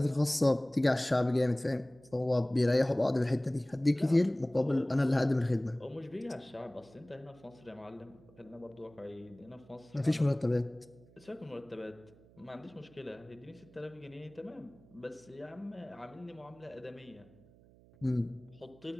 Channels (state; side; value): noise; right; hum, 26 dB below the sound